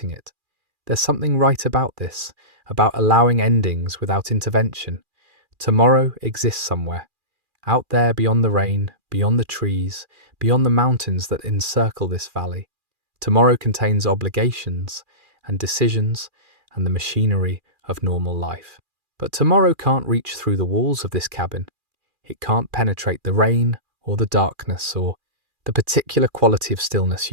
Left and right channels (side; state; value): left; late; 2.4 ms